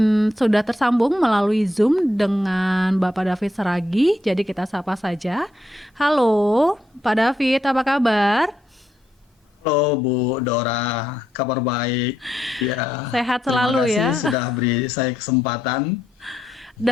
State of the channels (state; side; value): normal; both; correlation 0.79